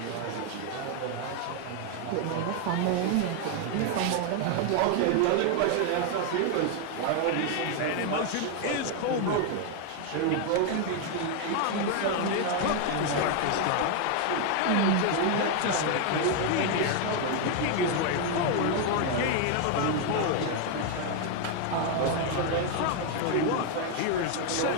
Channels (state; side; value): different; both; correlation 0.01